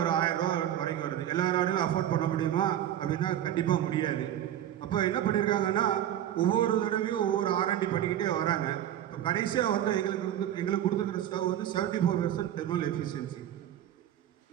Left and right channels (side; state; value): left; quieter; 11.5 dB